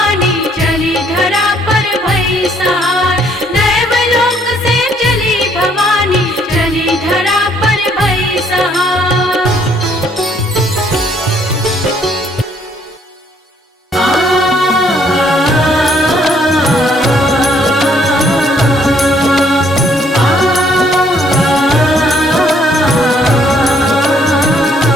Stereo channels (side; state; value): both; normal; correlation 0.66